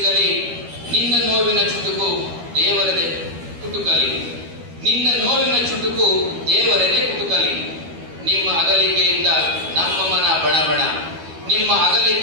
ನಿನ್ನ ನೋವಿನ ಚುಟುಕು ದೇವರದೆ ಕುಟುಕಲಿ, ನಿನ್ನ ನೋವಿನ ಚುಟುಕು ದೇವರದೆ ಕುಟುಕಲಿ. ನಿಮ್ಮ ಅಗಲಿಕೆಯಿಂದ ನಮ್ಮ ಮನ ಬಣಬಣ, ನಿಮ್ಮ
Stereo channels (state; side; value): late; left; 12 ms